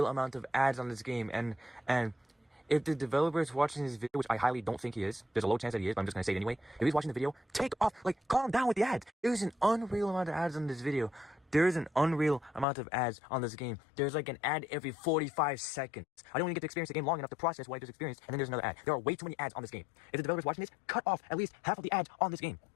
amount of ads on this game, and if the developer is watching this video, which I highly don't think he is, there's a low chance that he is, but I'm just gonna say it anyway. If he's watching the video, calm down with the ads. There's an unreal amount of ads on this video. There is an unreal amount of ads on this game. There's like an ad every 45 seconds. I don't even get to experience the game long enough to process what I just experienced, and then there's another ad. There are way too many ads on this game. If the developer's watching this, cut off at least half of the ads on this game.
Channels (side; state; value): right; drops out; at 12.7 s